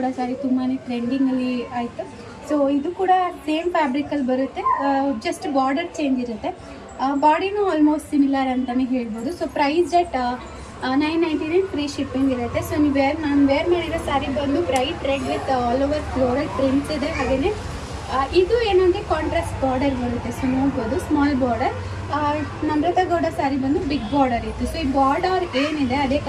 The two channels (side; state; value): both; identical; correlation 1.00